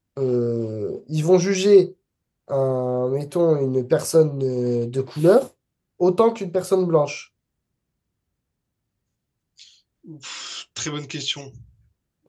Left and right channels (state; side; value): identical; both; correlation 1.00